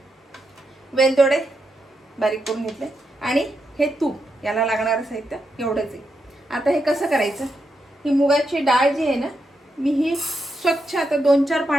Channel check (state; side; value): normal; both; correlation 0.84